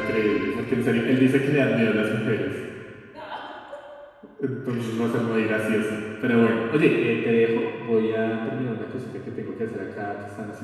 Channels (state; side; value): identical; both; correlation 1.00